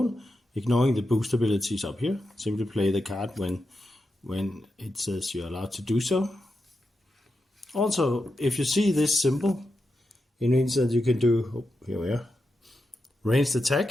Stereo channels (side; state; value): both; normal; correlation 0.88